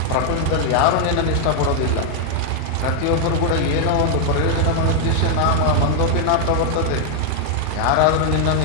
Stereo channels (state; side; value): different; both; correlation 0.00